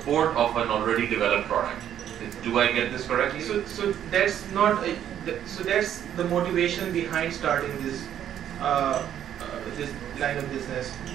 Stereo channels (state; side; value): quieter; left; 10.3 dB